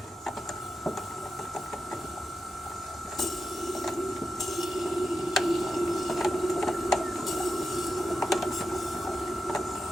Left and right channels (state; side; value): normal; both; correlation 0.88